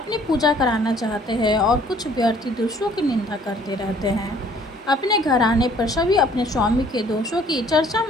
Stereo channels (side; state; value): both; normal; correlation 0.58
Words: पूजा कराना चाहते हैं और कुछ व्यर्थी दूसरों की निंदा करते रहते हैं। अपने घर आने पर सभी अपने स्वामी के दोषों की चर्चा